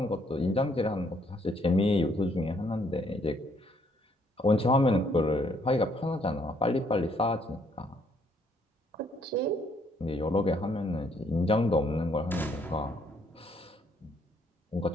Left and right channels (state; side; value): normal; both; correlation 0.68